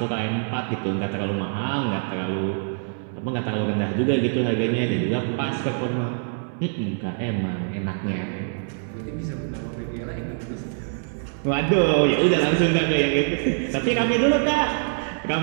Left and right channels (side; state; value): left; silent; 61 dB below the other